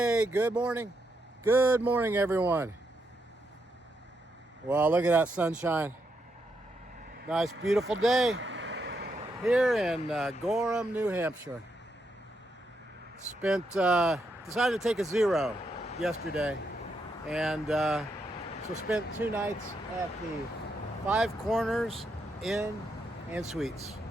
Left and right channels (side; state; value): both; normal; correlation 0.80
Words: good morning. Good morning, everyone. Well, look at that sunshine. Nice, beautiful day here in Gorham, New Hampshire. Decided to take a zero yesterday, and so spent 2 nights at the Five Corners Inn and Suites.